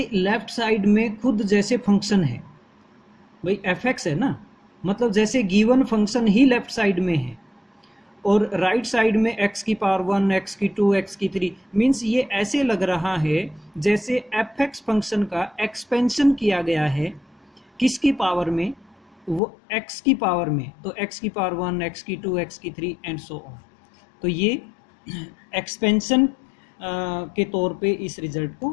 लेफ्ट साइड में खुद जैसे फंक्शन है, भाई एफ एक्स है ना, मतलब जैसे गिवन फंक्शन ही लेफ्ट साइड में है, और राइट साइड में x की पावर 1, x की 2, x की 3, मीन्स ये ऐसे लग रहा है जैसे एफ एक्स फंक्शन का एक्सपेंशन किया गया है किसकी पावर में, वो x की पावर में, तो x की पावर 1, x की 2, x की 3 एंड सो ऑन। तो ये एक्सपेंशन के तौर पे इस रिजल्ट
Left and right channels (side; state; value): right; drops out; at 19.4 s